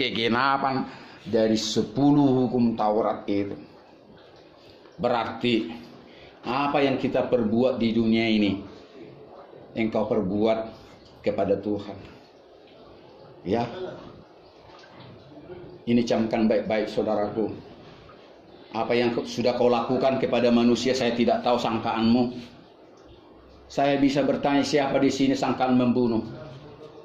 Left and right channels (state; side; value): identical; both; correlation 1.00